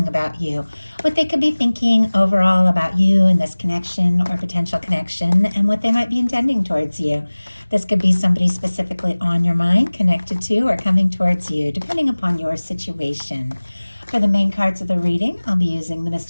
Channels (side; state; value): both; inverted; correlation -1.00